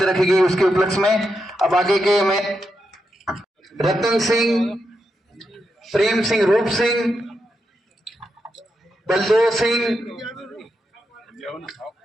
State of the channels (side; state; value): both; normal; correlation 0.85